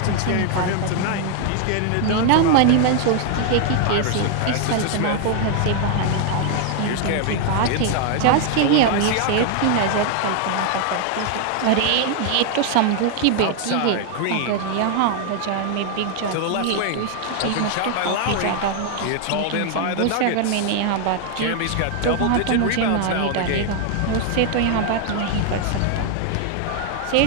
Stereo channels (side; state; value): both; different; correlation 0.00